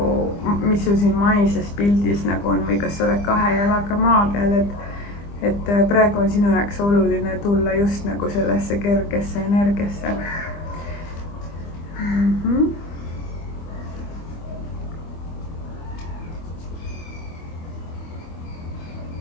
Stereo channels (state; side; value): late; right; 25 ms